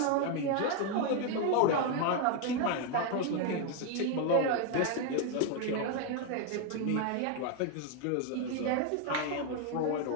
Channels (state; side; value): different; both; correlation 0.01